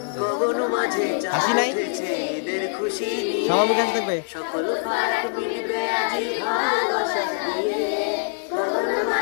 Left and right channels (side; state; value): right; silent; digital silence